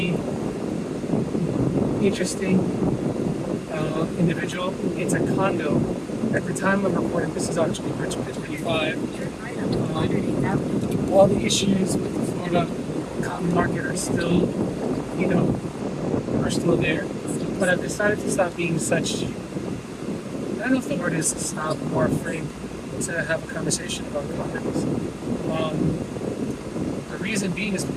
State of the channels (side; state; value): both; identical; correlation 1.00